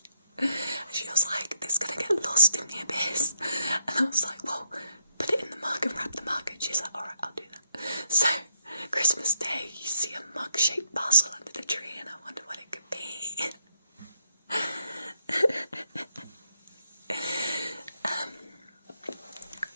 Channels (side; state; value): both; inverted; correlation -0.76